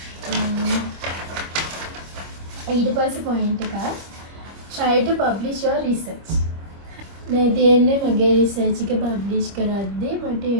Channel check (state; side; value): late; left; 25 ms